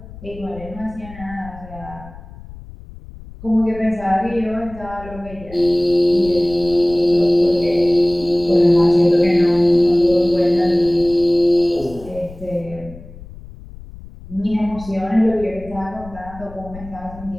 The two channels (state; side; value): noise; left; rumble, 17 dB below the sound